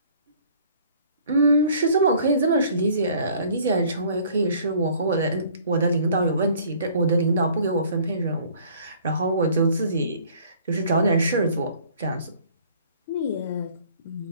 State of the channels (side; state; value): both; inverted; correlation -0.55